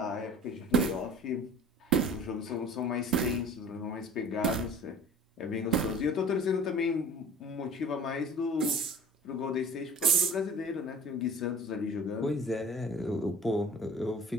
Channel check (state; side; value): normal; both; correlation 0.43